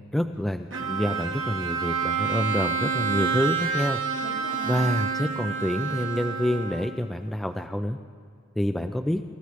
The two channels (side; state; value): both; normal; correlation 0.61